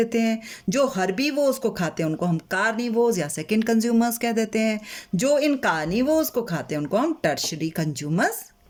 हैं। जो हर्बीवोर्स को खाते हैं उनको हम कार्निवोर्स या सेकंड कंज्यूमर्स कह देते हैं। जो इन कार्निवोर्स को खाते हैं उनको हम टर्शरी कंज्यूमर्स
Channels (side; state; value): both; identical; correlation 1.00